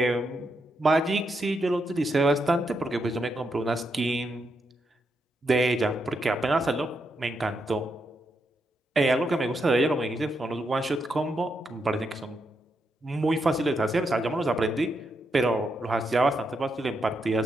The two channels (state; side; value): normal; both; correlation 0.82